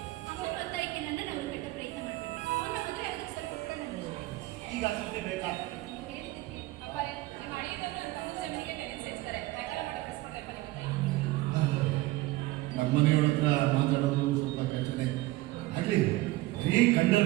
ಅವನ ಒತ್ತಾಯಕ್ಕೆ ನನ್ನನ್ನು ಅವರು ಕೆಟ್ಟ ಪ್ರಯತ್ನ ಮಾಡಬೇಡಿ. ಅವನ ಮದುವೆ ಆಗೋದಕ್ಕೆ ಸ್ವಲ್ಪ ಕೂಡ ನನಗೆ ಈಗ ಅಸತ್ತೆ ಬೇಕಾ? ಹೇಳಿದ್ದಕ್ಕೆ ಅಪ್ಪಾರೆ, ನಿಮ್ಮ ಅಳಿಯದವರು ನಮ್ಮ ತಮ್ಮ ಜಮೀನಿಗೆ ಟೆರೆನ್ಸ್ ಸೇರಿಸ್ತಾರೆ. ಬೇಕಾದ್ರೆ ಮಾಡಕ್ಕೆ ಕಳಿಸ್ಕೊಡ್ಲಪ್ಪ ನಿಮ್ಮ ತಾಯಿ. ನಮ್ಮ ಮನೆಯವ್ರ ಹತ್ರ ಮಾತಾಡೋದು ಸ್ವಲ್ಪ ಕಷ್ಟನೇ. ಆಗ್ಲಿ ಬರೀ ಕಂಡರ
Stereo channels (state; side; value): quieter; left; 18.7 dB